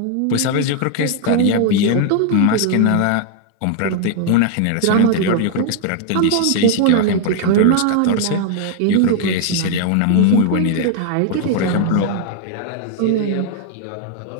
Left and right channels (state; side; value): different; both; correlation 0.00